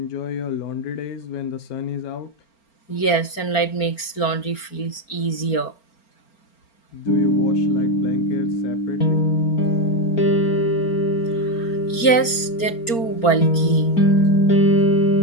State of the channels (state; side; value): late; right; 4.4 ms